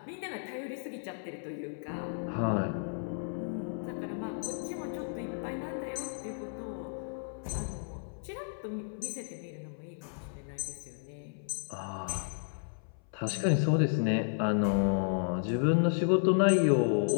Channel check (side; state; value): right; silent; 56 dB below the other